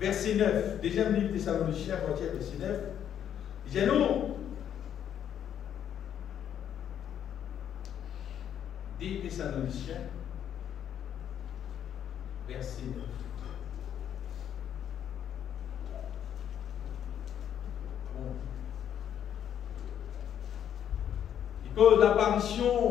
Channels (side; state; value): right; quieter; 9.6 dB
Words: 9, deuxième livre Thessaloniciens, à partir verset 9, il dit non. 2 Thessaloniciens, verset 9. Bon. Et que